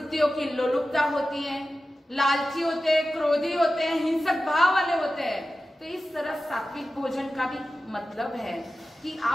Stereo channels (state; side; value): normal; both; correlation 0.94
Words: की लोलुपता होती है, लालची होते हैं, क्रोधी होते हैं, हिंसक भाव वाले होते हैं। तो इस तरह सात्विक भोजन का भी मतलब है कि